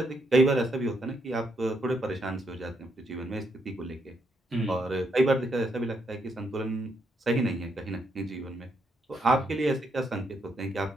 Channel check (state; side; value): normal; both; correlation 0.77